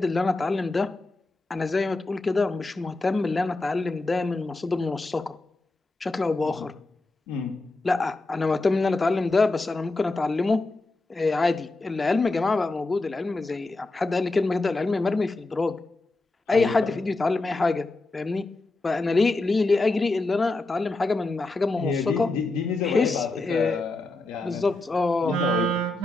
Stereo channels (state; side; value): quieter; right; 3.1 dB